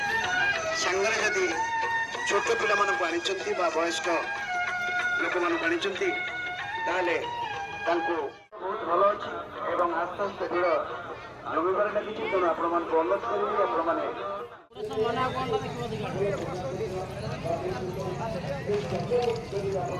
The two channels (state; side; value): identical; both; correlation 1.00